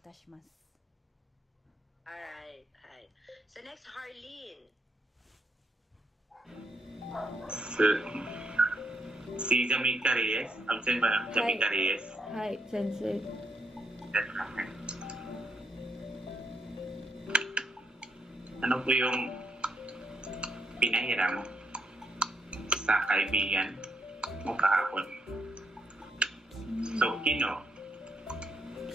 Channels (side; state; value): both; normal; correlation 0.77